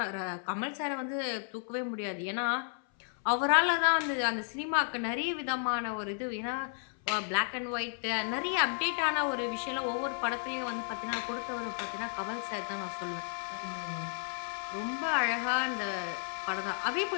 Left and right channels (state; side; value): silent; right; 56 dB below the other